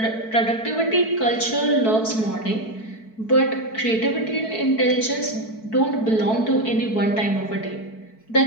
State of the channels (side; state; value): right; late; 4.6 ms